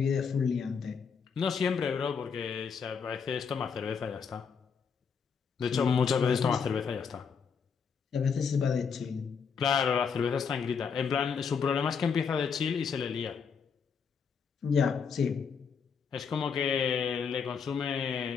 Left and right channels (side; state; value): right; quieter; 6.3 dB